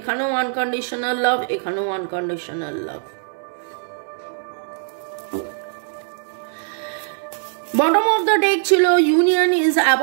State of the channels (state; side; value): silent; left; digital silence